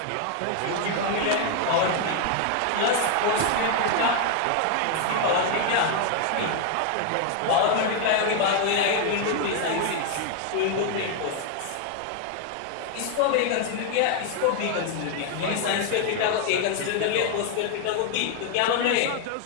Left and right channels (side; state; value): both; different; correlation 0.00